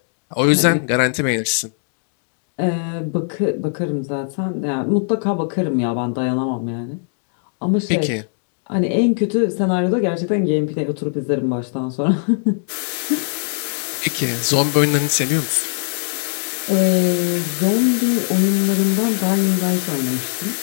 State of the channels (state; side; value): silent; right; digital silence